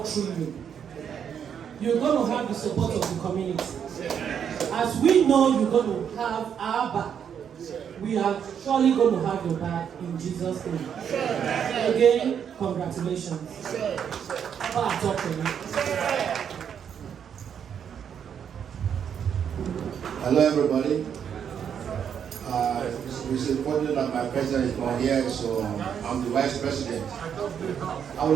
through you. You're going to have the support of the community. As we know you're going to have our back, we are surely going to have your back in Jesus' name. Again, congratulations. Hello, everybody. It's important that my president is not here, so I'm the vice president. I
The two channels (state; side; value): quieter; left; 8.1 dB